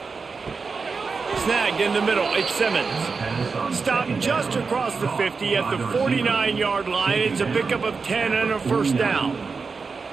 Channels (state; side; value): quieter; left; 4.8 dB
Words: Snagged in the middle, it's Simmons. Stopped just across the 50 at the 49-yard line. It's a pickup of 10 and a first down.